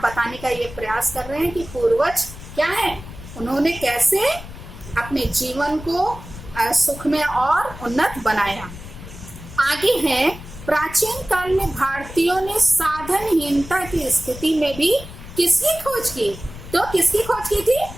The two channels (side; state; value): left; noise; rumble, 14 dB below the sound